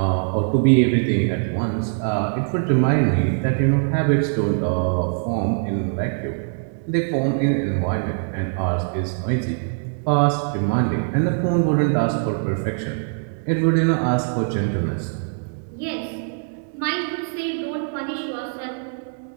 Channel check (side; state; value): left; silent; 64 dB below the other